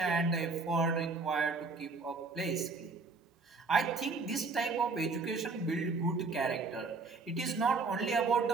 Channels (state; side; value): quieter; left; 4.1 dB